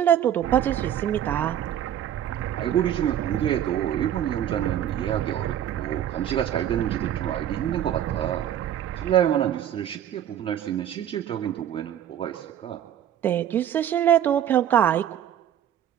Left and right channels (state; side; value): quieter; left; 10.6 dB